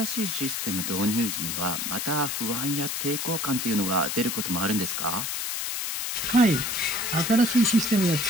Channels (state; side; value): noise; left; hiss, 2 dB below the sound